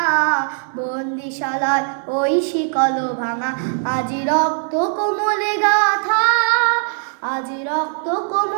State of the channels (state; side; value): silent; left; 66 dB below the other